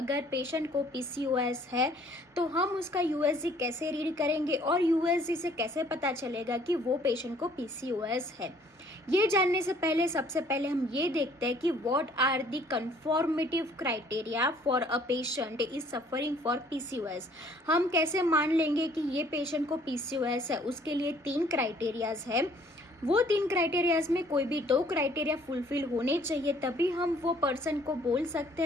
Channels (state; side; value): normal; both; correlation 0.59